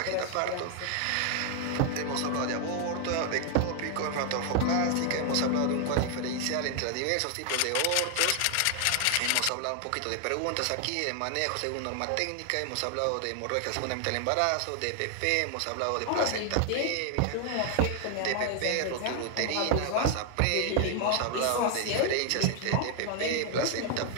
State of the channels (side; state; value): both; different; correlation 0.00